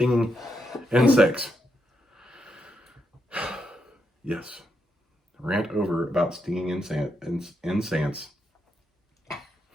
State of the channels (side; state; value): both; normal; correlation 0.81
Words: insects. Yes. Rant over about stinging insects.